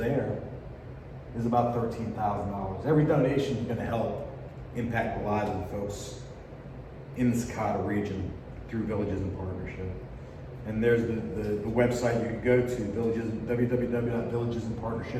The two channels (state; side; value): identical; both; correlation 1.00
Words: is about $13,000. Every donation is going to help impact the lives of the folks in the Sakata region through Villages in Partnership. And there's the website you can go to,